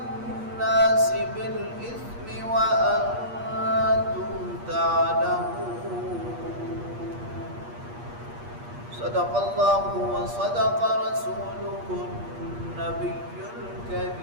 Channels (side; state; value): left; late; 8.5 ms